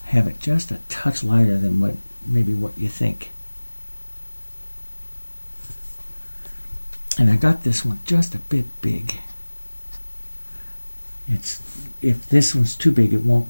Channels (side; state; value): both; inverted; correlation -1.00